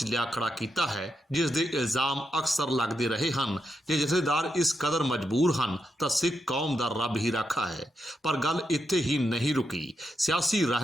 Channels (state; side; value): normal; both; correlation 0.83